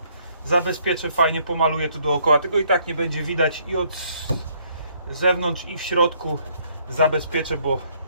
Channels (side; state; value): both; inverted; correlation -0.66